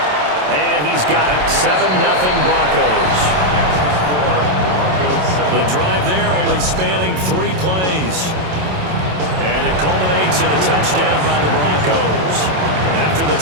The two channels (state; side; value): late; left; 27 ms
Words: And he's got it. 7-0 Broncos. The drive there only spanning 3 plays. And it culminates in a touchdown by the Broncos. After the